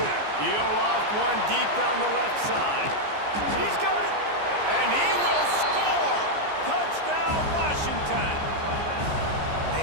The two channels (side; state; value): left; late; 14 ms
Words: He'll loft one deep down the left side. He's got it. And he will score. Touchdown, Washington.